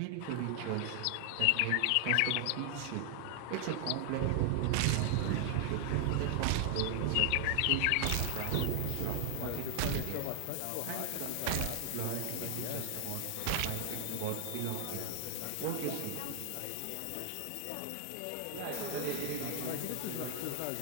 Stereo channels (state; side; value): different; both; correlation 0.00